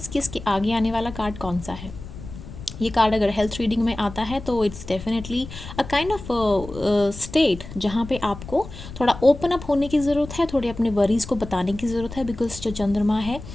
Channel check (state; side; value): noise; left; rumble, 13 dB below the sound